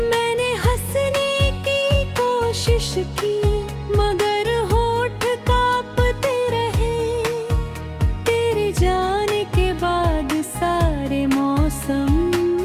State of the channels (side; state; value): both; identical; correlation 1.00